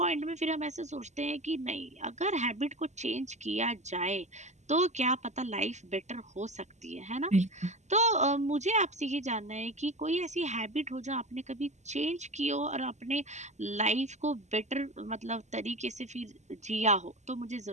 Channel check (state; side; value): late; left; 0.33 ms